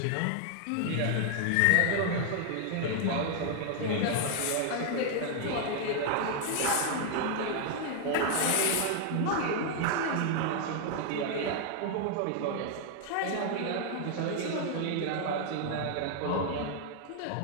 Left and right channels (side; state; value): both; different; correlation 0.00